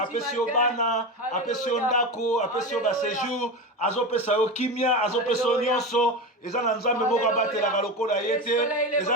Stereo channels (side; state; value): both; normal; correlation 0.22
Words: yo bana, apesi yo ndako, apesi yo ba séjour, azopesa yo kimia, azopesa yo nyonso, eza na nzambe moko abatelaka lokola ye te,